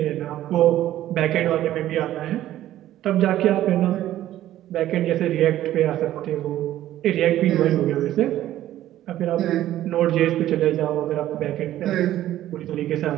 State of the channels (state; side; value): quieter; left; 13.3 dB